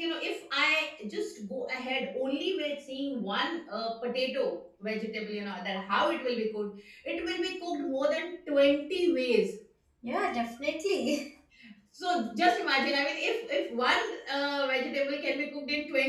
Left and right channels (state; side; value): identical; both; correlation 1.00